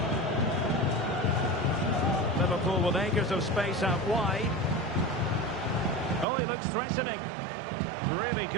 Liverpool with acres of space out wide. Oh, he looks threatening. Really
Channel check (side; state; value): left; drops out; at 6.2 s